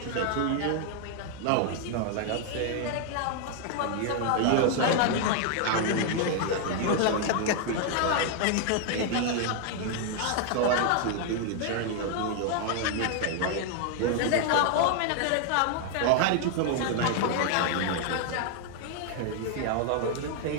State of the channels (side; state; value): both; different; correlation 0.00